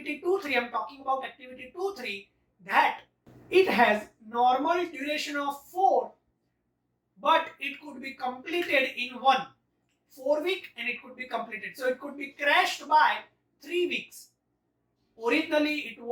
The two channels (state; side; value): identical; both; correlation 1.00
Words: 2, 3, I am talking about activity 2, 3, that it has normal duration of 4, but it could be completed in 4 week, and it could be completed. So it could be crashed by 3 weeks. Originally it